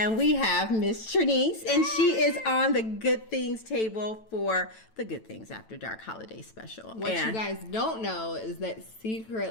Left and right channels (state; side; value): late; right; 9.1 ms